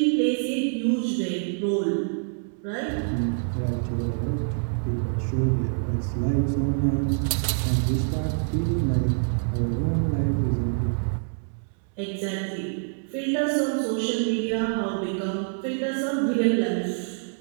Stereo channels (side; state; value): left; silent; 61 dB below the other